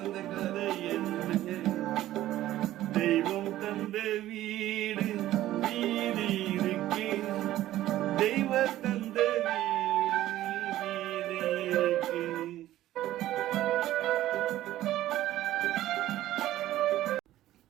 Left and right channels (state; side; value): quieter; left; 14.3 dB